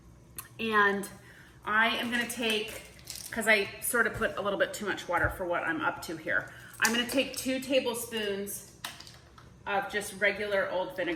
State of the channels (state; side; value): identical; both; correlation 1.00